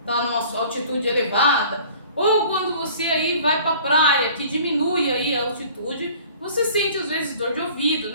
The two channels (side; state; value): both; inverted; correlation -0.49